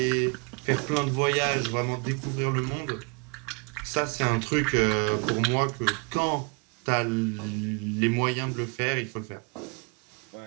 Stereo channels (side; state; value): left; quieter; 33.2 dB